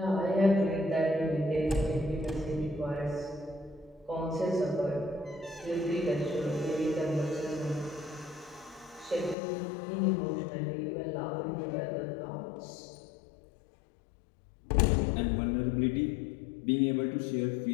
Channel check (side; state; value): right; drops out; at 9.3 s